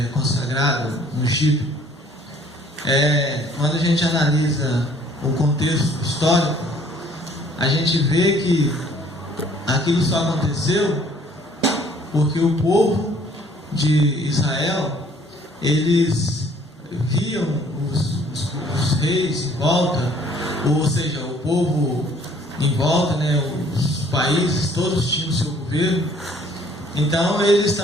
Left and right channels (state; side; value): normal; both; correlation 0.58